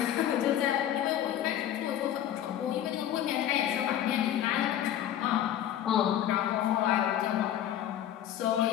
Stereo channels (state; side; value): quieter; right; 11.1 dB